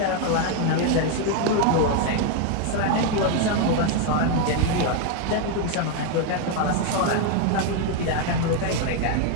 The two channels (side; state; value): both; different; correlation 0.01